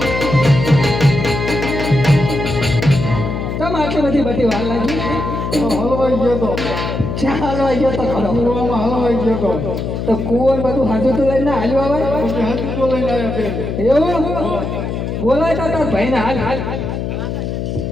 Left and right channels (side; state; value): left; noise; hum, 3 dB below the sound